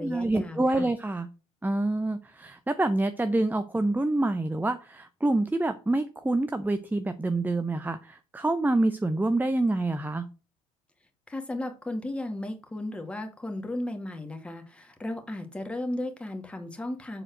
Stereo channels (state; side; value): normal; both; correlation 0.93